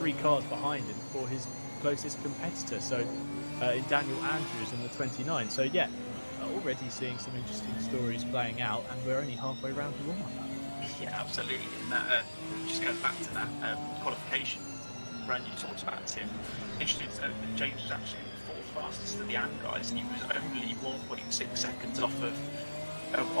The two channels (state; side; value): inverted; both; correlation -1.00